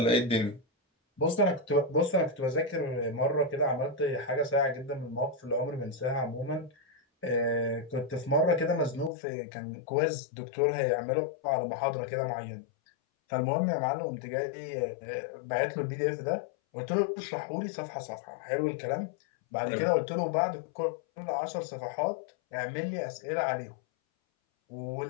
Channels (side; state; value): right; drops out; at 9.1 s